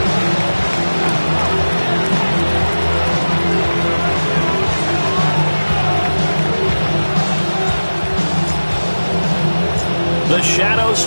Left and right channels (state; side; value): inverted; both; correlation -1.00